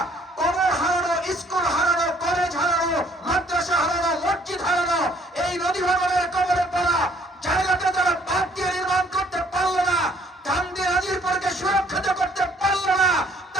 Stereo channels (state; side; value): normal; both; correlation 0.61